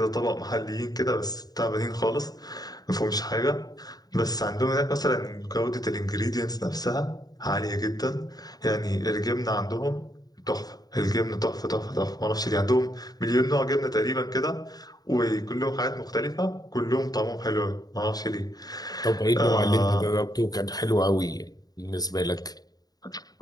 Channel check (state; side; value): late; right; 0.19 ms